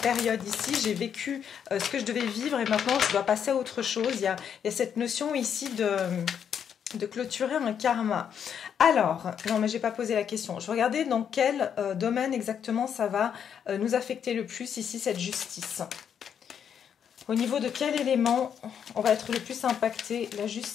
ici, j'ai vécu ce que je devais vivre et maintenant je dois passer à autre chose. Il y a cette notion ici de clôturer un karma. Alors, non mais j'ai pas posé la question. Je regardais dans quel domaine exactement ça va nous affecter le plus ici, cette justice. Au niveau de quel élément on va être le plus impacté? La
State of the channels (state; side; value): quieter; right; 8.1 dB